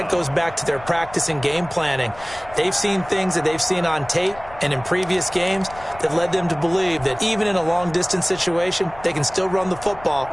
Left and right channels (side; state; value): left; noise; rumble, 19 dB below the sound